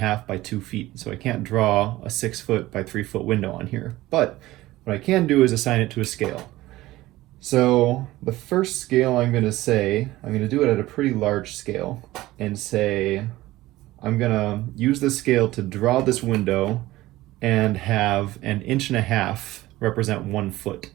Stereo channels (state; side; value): quieter; left; 17.3 dB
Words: by 2 feet, so I can't draw a 6 foot by 3 foot window on here. But what I can do is assign it to a scale. So the first scale I'm going to do it at a pretty large scale and say I'm going to use this scale to draw this window and have 1.5 inches represent 1 foot.